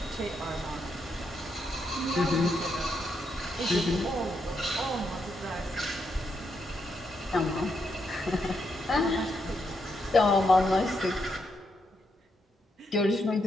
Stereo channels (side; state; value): both; normal; correlation 0.80